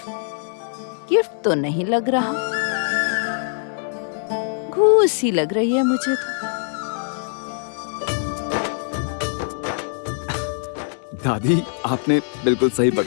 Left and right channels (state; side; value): silent; right; digital silence